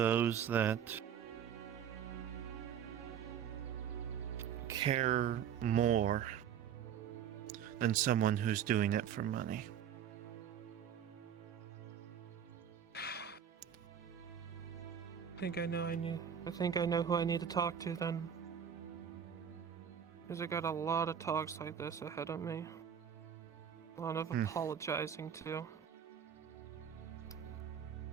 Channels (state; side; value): quieter; left; 8.5 dB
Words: that care more than someone who's doing it for money. I think I know who I need to talk to then. Because I got a lot of talks like this ahead of me. A lot of apologizing too.